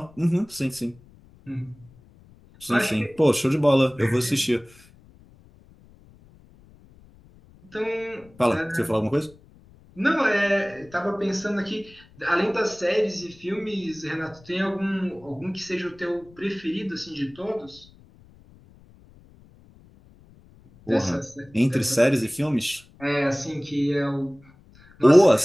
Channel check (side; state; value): left; noise; rumble, 26 dB below the sound